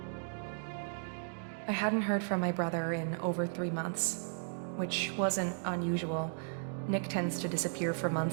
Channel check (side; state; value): left; silent; digital silence